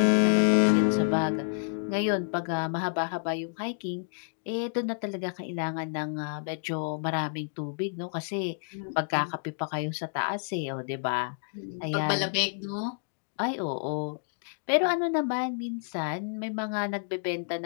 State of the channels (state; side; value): silent; right; digital silence